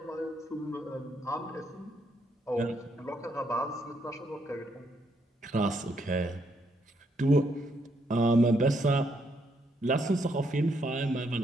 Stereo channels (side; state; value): both; normal; correlation 0.74